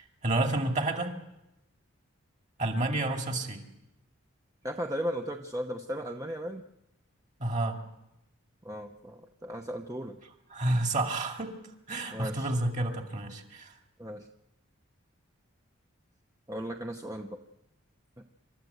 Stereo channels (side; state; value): both; normal; correlation 0.58